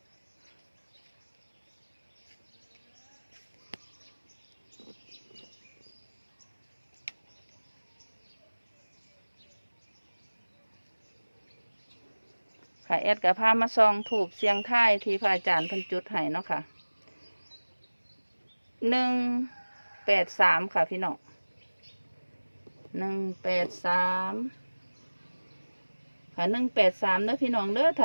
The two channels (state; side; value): inverted; both; correlation -1.00